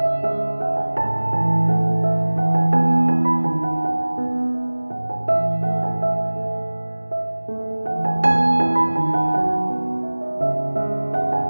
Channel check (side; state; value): both; inverted; correlation -1.00